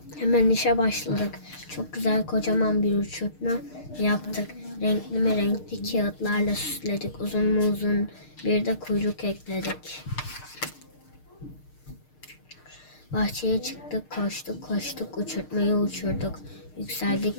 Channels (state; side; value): late; right; 6.6 ms